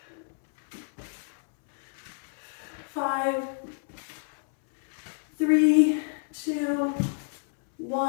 5, 3, 2,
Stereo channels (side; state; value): right; silent; 59 dB below the other